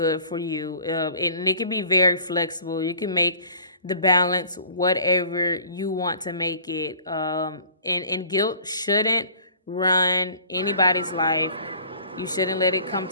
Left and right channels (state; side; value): inverted; both; correlation -0.50